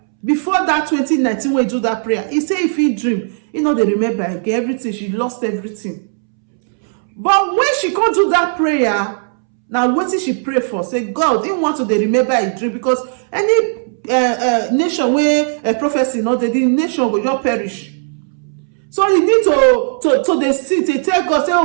before that 2019 when he do that prayer, he said if he dream, he know they remember again everything. She lost everything. But when she can't do that prayer, now what did she pray for? Say, God didn't want to dey remember a dream, because any nation where a prophecy not the nation will just perish. So you need to dey sit, they tell God, say,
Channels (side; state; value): left; silent; 69 dB below the other